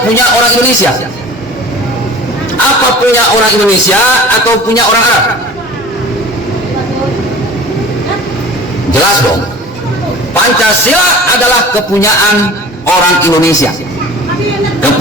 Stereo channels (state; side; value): normal; both; correlation 0.42